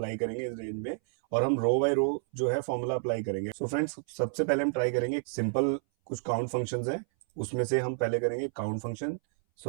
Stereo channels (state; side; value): silent; left; 58 dB below the other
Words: करेंगे इस रेंज में। और हम रो बाय रो जो है फॉर्मूला अप्लाई करेंगे। सो फ्रेंड्स, सबसे पहले हम ट्राई करेंगे सिंपल कुछ काउंट फंक्शंस हैं, उसमें से हम पहले करेंगे काउंट फंक्शन।